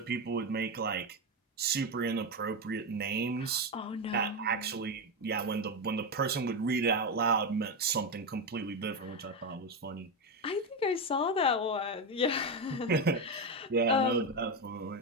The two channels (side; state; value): both; normal; correlation 0.11